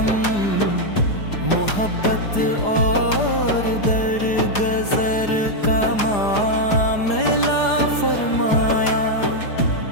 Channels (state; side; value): late; right; 4.9 ms